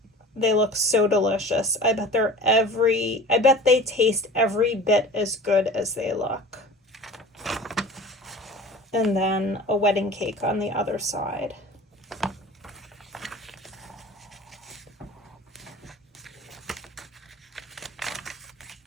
They look so delicious. I bet they taste every bit as good as they look. And then a wedding cake on the other side.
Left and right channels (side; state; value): both; normal; correlation 0.40